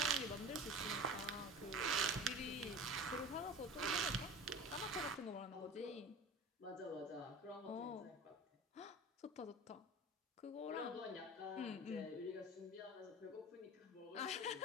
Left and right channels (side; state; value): both; normal; correlation 0.36